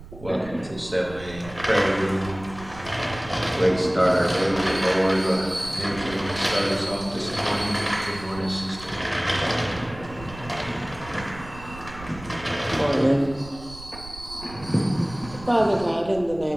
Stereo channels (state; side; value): noise; right; rumble, 16 dB below the sound